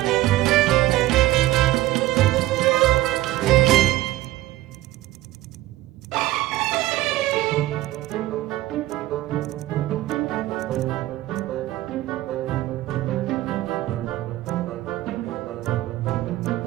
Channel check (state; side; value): quieter; left; 16.3 dB